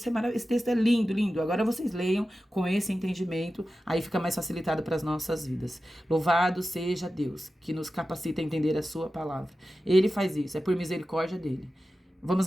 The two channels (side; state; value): both; normal; correlation 0.93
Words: é maravilhoso. Esse texto é lindo, lindo. Agora vocês leiam com esse entendimento, aí fica mais facilitado para as nossas vidas. Louvado seja Deus, que nos capacita a entender a sua palavra. Ele faz isso, é por misericórdia dele. Vamos